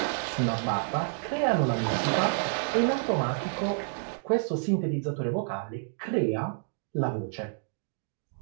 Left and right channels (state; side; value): silent; left; digital silence